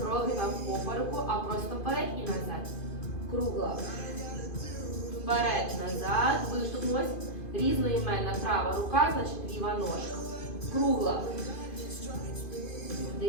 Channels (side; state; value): right; late; 2.5 ms